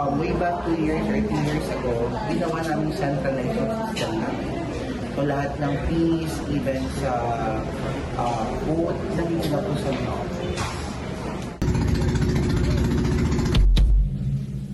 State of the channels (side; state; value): both; identical; correlation 1.00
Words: way back 2 years or 3 years ago, ginawa namin centralized system namin. So lahat ng fees, even sa boat, nandito na po sa mga office.